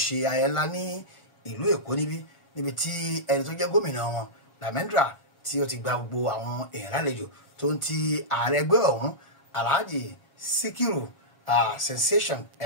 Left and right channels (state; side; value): late; right; 1.4 ms